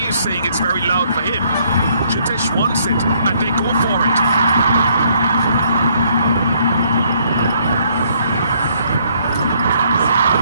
is saying it's very loud for him. Jitesh wants it, and they go for it.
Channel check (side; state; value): both; inverted; correlation -0.67